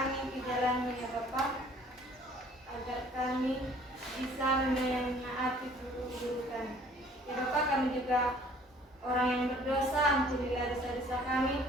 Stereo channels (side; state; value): both; normal; correlation 0.55